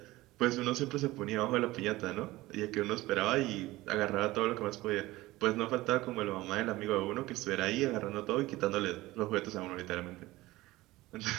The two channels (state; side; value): quieter; left; 18.5 dB